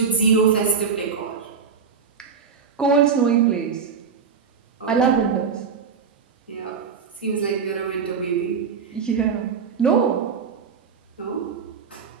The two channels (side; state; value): left; quieter; 6.1 dB